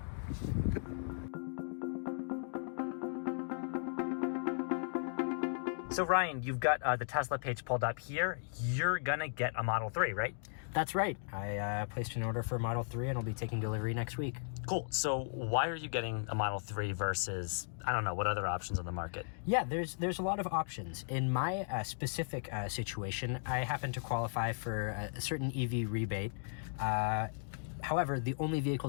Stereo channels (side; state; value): right; silent; digital silence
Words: So Ryan, you've got the Tesla page pulled up here. You're gonna get a Model 3, right? That's right. I placed an order for a Model 3 and I'll be taking delivery next week. Cool. So why are you getting a Model 3 versus, I don't know, what other options on the market? Yeah, there's a lot of options. In my specific situation, I happen to qualify for a certain EV rebate. However, the only